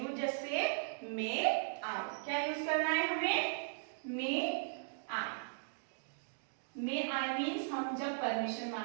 just say may आई। क्या यूज करना है हमें? मे आई। मे आई मीन्स हम जब परमिशन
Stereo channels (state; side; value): silent; left; digital silence